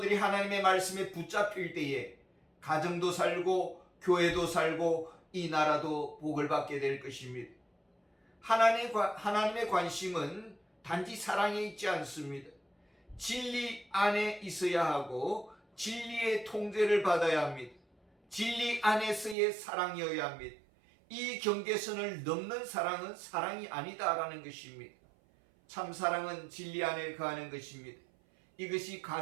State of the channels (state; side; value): drops out; left; at 19.4 s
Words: 하나님의 말씀에 붙잡힐 때에 가정도 살고 교회도 살고 이 나라도 복을 받게 될 것입니다. 하나님의 관심은 단지 사랑에 있지 않습니다. 진리 안에 있어야 하고 진리의 통제를 받아야 합니다. 진리 안에서의 사랑이어야 합니다. 이 경계선을 넘는 사랑은 사랑이 아니다라는 것입니다. 참 사랑은 진리 안에 거하는 것입니다. 이것이